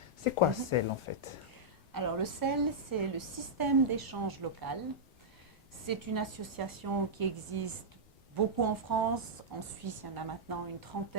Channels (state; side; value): normal; both; correlation -0.09